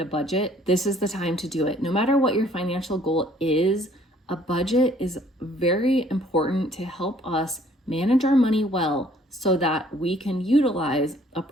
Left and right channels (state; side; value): normal; both; correlation 0.60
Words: budget, this is the time to do it. No matter what your financial goal is, a budget is very important to help us manage our money well so that we can utilize a